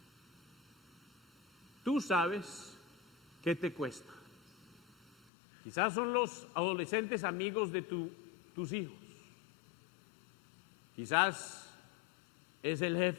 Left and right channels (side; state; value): right; drops out; at 5.2 s